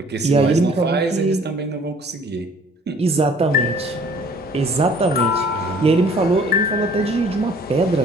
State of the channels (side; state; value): both; normal; correlation 0.54